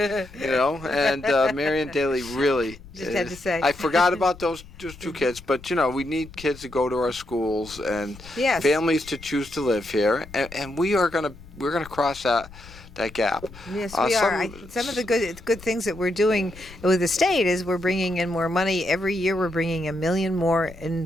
Marianne Daly really. Just had to say. I forgot about those 2 kids, but we need kids to go to our schools and Yes. families to choose to live here, and we're gonna cross that gap. Yes, we are. Some of the good things that we're doing with the state is we're bringing in more money. Every year we're bringing $1 million more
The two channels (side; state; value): left; noise; rumble, 19 dB below the sound